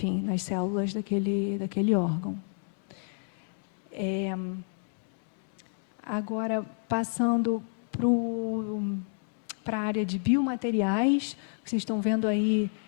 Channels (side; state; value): right; silent; digital silence